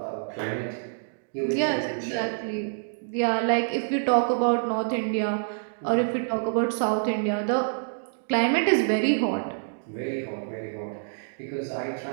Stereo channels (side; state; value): left; silent; digital silence